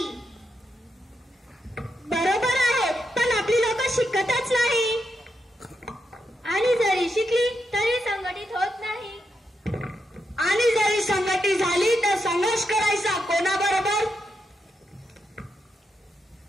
बरोबर आहे, पण आपली लोक शिकतच नाही आणि जरी शिकली तरी संघटित होत नाही. आणि जरी संघटित झाली तर संघर्ष करायचा कोणाबरोबर?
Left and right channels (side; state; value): both; normal; correlation 0.84